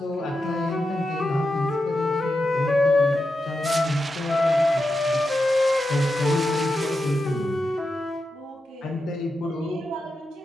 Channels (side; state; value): both; normal; correlation 0.88